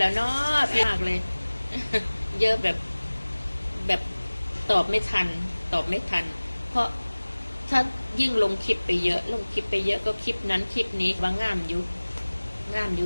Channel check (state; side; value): inverted; both; correlation -1.00